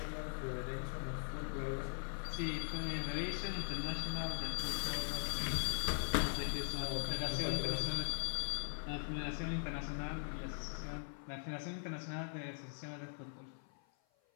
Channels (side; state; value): right; silent; 50 dB below the other